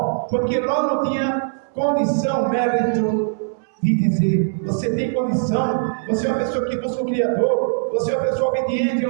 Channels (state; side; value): silent; left; 65 dB below the other